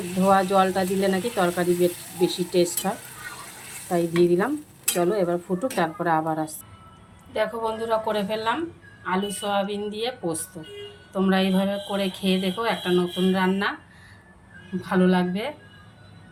ধোয়া জলটা দিলে নাকি তরকারি বেশি টেস্ট হয়, তাই দিয়ে দিলাম। চলো এবার ফুটুক, তারপরে আবার আসছি। দেখো বন্ধুরা, করে ফেললাম আলু সোয়াবিন দিয়ে পোস্ত। তোমরা এইভাবে করে খেয়ে দেখো, একটা নতুন রান্না, ভালো লাগবে।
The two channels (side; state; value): both; identical; correlation 1.00